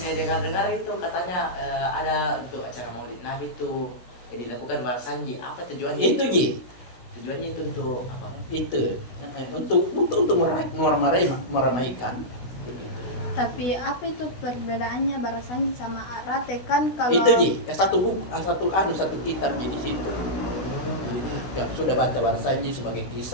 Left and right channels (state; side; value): late; right; 16 ms